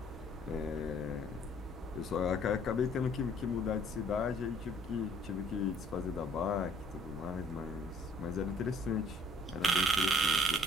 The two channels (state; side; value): normal; both; correlation 0.59